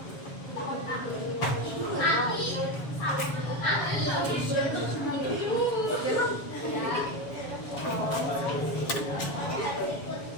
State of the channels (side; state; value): right; late; 7.2 ms